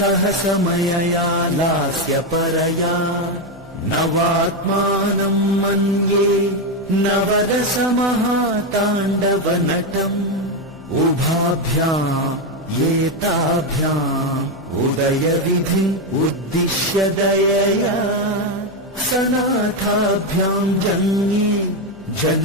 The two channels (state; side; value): noise; left; hum, 24 dB below the sound